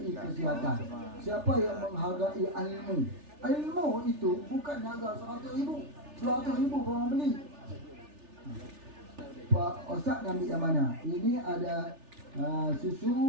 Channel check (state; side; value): late; left; 3.4 ms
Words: kesihatan, siapa yang menghargai ilmu. Ilmu itu bukan harga 100,000, 200,000 orang beli. Pak Ustaz nak ambil yang mana? Ini ada susu,